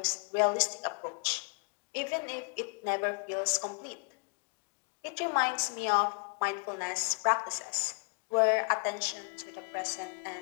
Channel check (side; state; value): right; quieter; 37.9 dB